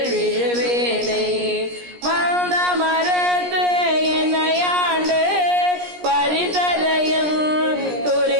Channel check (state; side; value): late; left; 17 ms